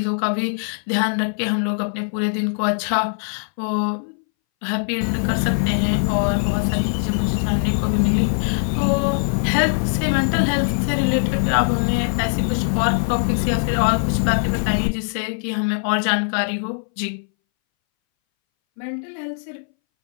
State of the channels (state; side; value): silent; right; 63 dB below the other